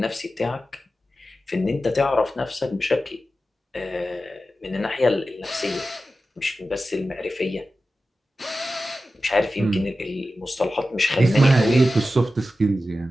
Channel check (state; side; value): normal; both; correlation 0.93